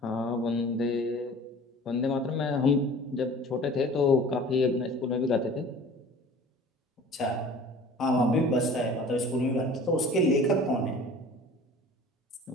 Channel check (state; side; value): normal; both; correlation 0.45